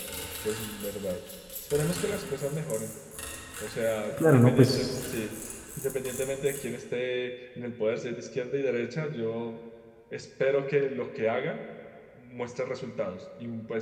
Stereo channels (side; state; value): both; identical; correlation 1.00